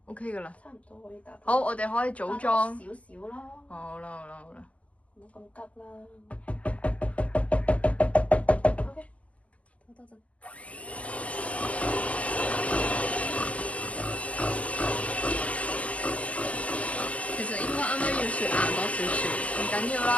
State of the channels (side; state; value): right; late; 0.065 ms